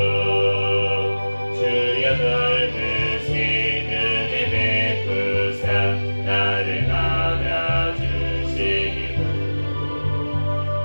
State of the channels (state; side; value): inverted; both; correlation -1.00